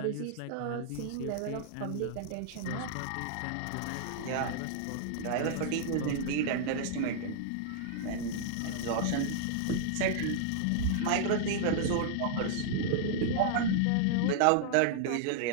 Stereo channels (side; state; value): both; different; correlation -0.01